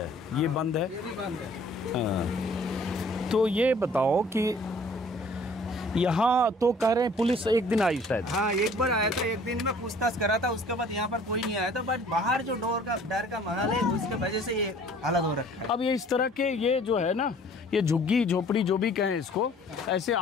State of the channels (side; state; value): both; normal; correlation 0.54